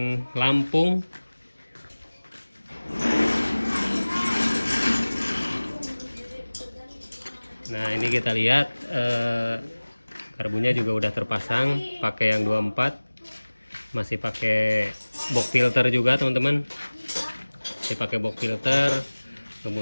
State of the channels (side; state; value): both; inverted; correlation -1.00